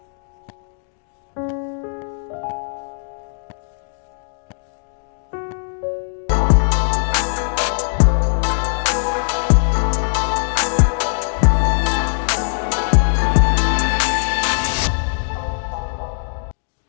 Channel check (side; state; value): right; silent; digital silence